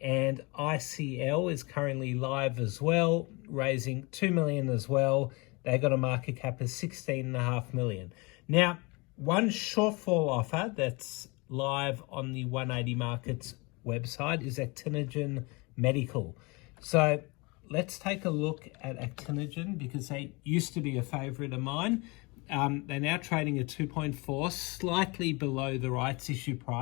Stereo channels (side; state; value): right; quieter; 27.2 dB